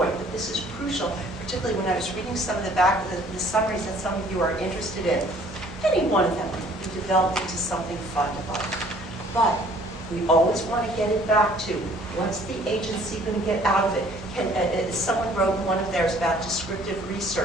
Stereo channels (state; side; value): normal; both; correlation 0.57